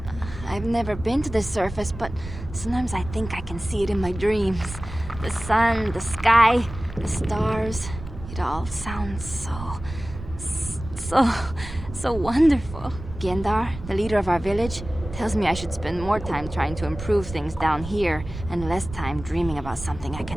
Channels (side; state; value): right; noise; rumble, 11 dB below the sound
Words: I've never been to the surface, but sometimes I think I can see it in my dreams. The sun, the sky, the stars. It all sounds so wonderful. Gendar, the leader of our village, tells me I should spend more time trying to improve things down here and less time dreaming about something I